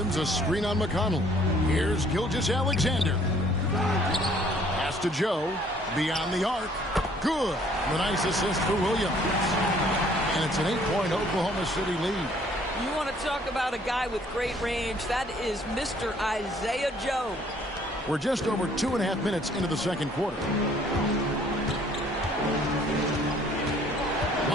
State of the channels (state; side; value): normal; both; correlation 0.60